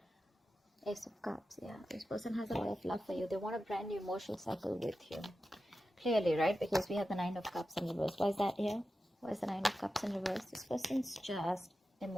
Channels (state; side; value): normal; both; correlation 0.92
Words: Ace of Cups, yeah. This person has a lot of love for you. They want a brand new emotional cycle with you. Clearly, right? Because we have the Nine of Cups in reverse. Why is that here? Why is the Nine of Cups in reverse? This person's just